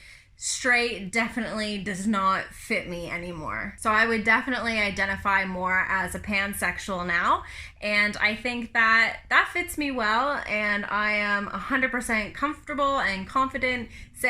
straight definitely does not fit me anymore. So I would definitely identify more as a pansexual now, and I think that fits me well, and I am 100% comfortable and confident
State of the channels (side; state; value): both; identical; correlation 1.00